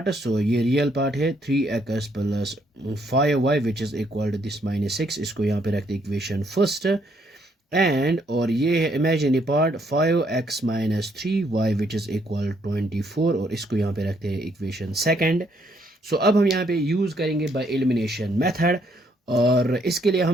So ये रियल पार्ट है 3x plus 5y which is equal to this minus 6, इसको यहाँ पे रखते इक्वेशन फर्स्ट एंड, और ये है imaginary part 5x minus 3y which is equal 24 और इसको यहाँ पे रखते हैं इक्वेशन सेकंड। सो अब हम यहाँ पे यूज़ करेंगे बाय एलिमिनेशन मेथड और इसके लिए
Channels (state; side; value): normal; both; correlation 0.71